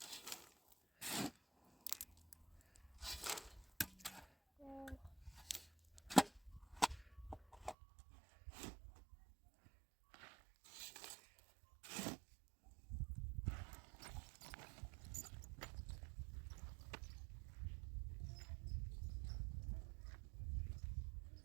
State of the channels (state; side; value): drops out; left; at 7.8 s